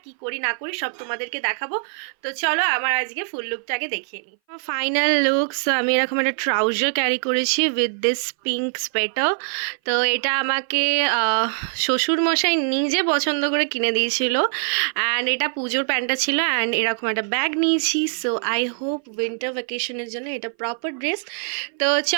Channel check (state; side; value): silent; left; 59 dB below the other